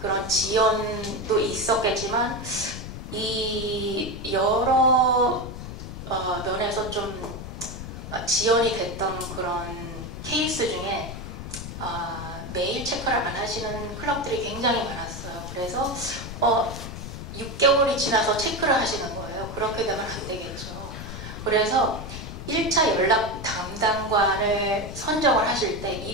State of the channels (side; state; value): left; noise; rumble, 9 dB below the sound